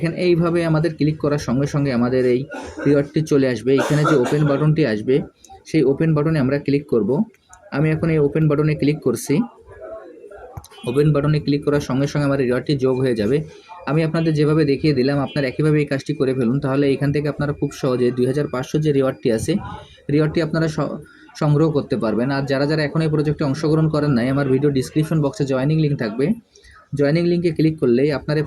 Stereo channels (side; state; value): both; identical; correlation 1.00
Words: এইভাবে আমাদের ক্লিক করার সঙ্গে সঙ্গে আমাদের এই রিওয়ার্ডটি চলে আসবে। এখানে যে ওপেন বাটনটি আসবে সেই ওপেন বাটনে আমরা ক্লিক করব। আমি এখন এই ওপেন বাটনে ক্লিক করছি। ওপেন বাটনে ক্লিক করার সঙ্গে সঙ্গে আমার রিওয়ার্ডটি যোগ হয়ে যাবে। আমি আপনাদের যেভাবে দেখিয়ে দিলাম আপনারা একইভাবে এই কাজটি করে ফেলুন, তাহলে এখান থেকে আপনারা খুব সহজে 2500 যে রিওয়ার্ডটি আছে রিওয়ার্ডটি আপনারা সংগ্রহ করতে পারবেন। আর যারা যারা এখন এই প্রজেক্টে অংশগ্রহণ করেন নাই, আমার ভিডিও ডিসক্রিপশন বক্সে জয়েনিং লিঙ্ক থাকবে। জয়েনিং লিঙ্কে ক্লিক করলেই আপনারা এই